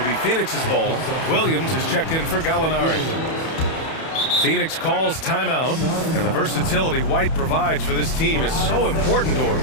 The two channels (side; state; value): right; late; 31 ms